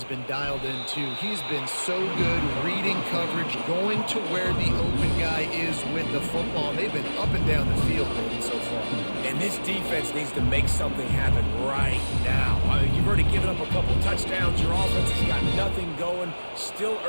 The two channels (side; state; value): both; inverted; correlation -1.00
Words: been dialed in, too. He's been so good reading coverage, going to where the open guy is with the football. They've been up and down the field so far. And this defense needs to make something happen right now. I mean, you've already given up a couple touchdowns. Your offense has got nothing going. Still